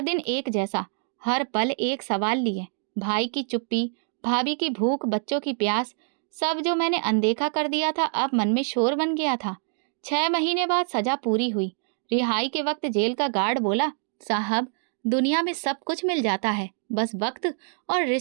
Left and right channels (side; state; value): left; silent; 60 dB below the other